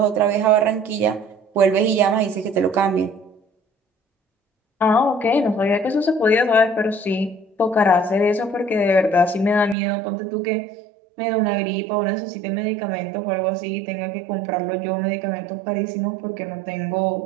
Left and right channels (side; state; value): left; drops out; at 9.8 s